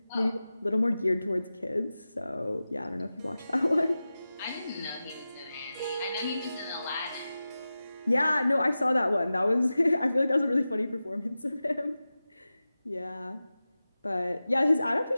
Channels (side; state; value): both; inverted; correlation -0.95